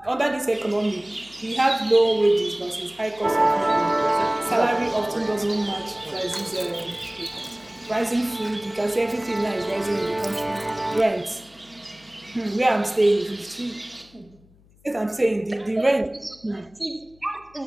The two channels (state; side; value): noise; left; hum, 29 dB below the sound